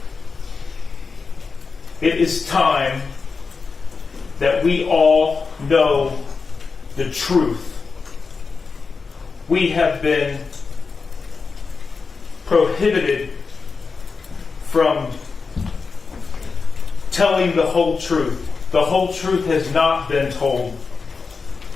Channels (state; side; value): quieter; right; 4.8 dB